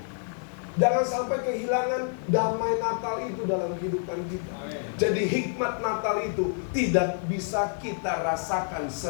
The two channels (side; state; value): right; silent; 59 dB below the other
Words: Jangan sampai kehilangan damai Natal itu dalam kehidupan kita. Jadi hikmat Natal itu tidak bisa kita rasakan